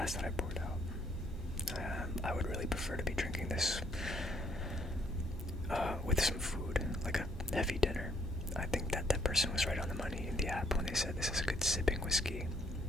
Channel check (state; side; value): normal; both; correlation 0.67